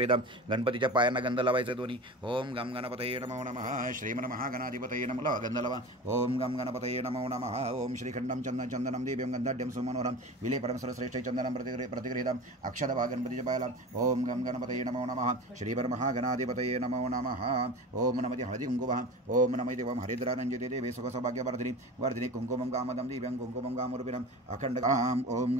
गणपतीच्या पायांना गंध लावायचा दोन्ही ओम गम गणपतये नमो नमः श्रीमन्महागणाधिपतये नमः गंधलवा ओम गम गणपतये नमो नमः ओम श्रीखंडम चंदनम दिव्यं गंधाढ्यं सुमनोरम विले परमसुरश्रेष्ठ चंदनम प्रतिगृहीतम अक्षदभा गणपतीच्या पायाला ओम गम गणपतये नमो नमः श्रीपरमहागणाधिपतये नमो नमः ओम नमः हळदी कुंकुमः ओम नमः देवं हरिद्रानंदिते देवे सुखसौभाग्यवर्धिनी वर्धिनी कुंकुमं कामदं दिव्यं कुंकुमं कामरूपिणम् अखंडकाम ओम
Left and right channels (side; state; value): both; normal; correlation 0.32